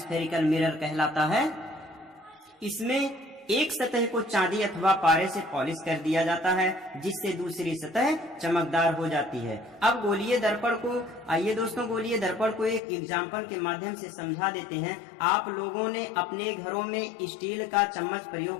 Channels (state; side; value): drops out; right; at 12.8 s